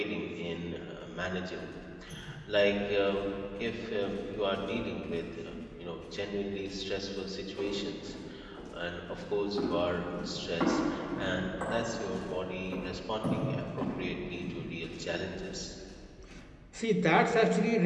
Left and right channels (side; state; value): both; identical; correlation 1.00